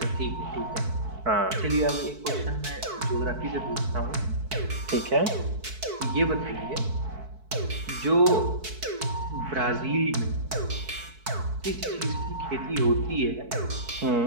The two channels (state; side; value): late; left; 4.6 ms